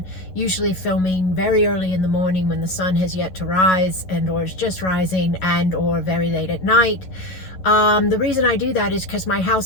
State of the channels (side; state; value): right; late; 11 ms